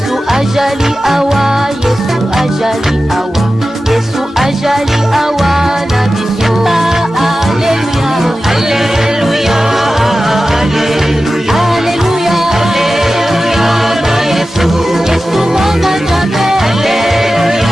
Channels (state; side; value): normal; both; correlation 0.94